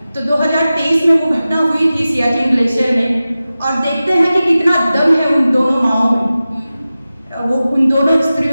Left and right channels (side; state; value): both; inverted; correlation -0.95